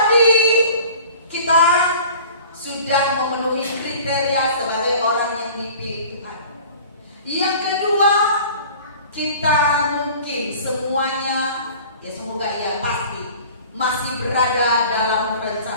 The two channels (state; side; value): inverted; both; correlation -0.45